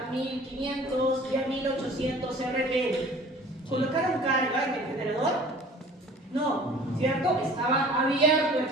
1500 y a 1800 RPM. ¿Colocaron carga en el generador? No, ¿cierto? Estaba abierto el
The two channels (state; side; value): normal; both; correlation 0.47